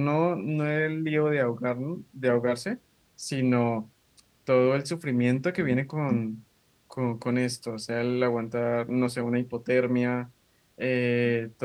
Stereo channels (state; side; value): identical; both; correlation 1.00